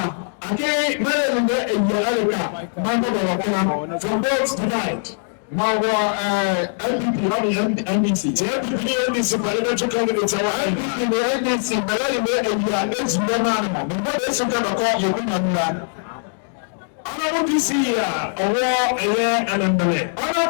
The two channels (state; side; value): silent; right; 65 dB below the other